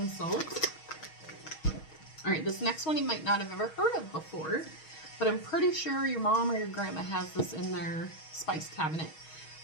salt. All right, this next one you might not have ever heard of before. But I'm pretty sure your mom or your grandma has this in their spice cabinet.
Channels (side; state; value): right; late; 6.3 ms